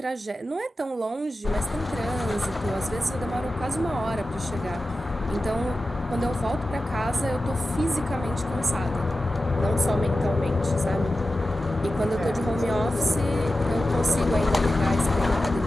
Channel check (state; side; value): normal; both; correlation 0.93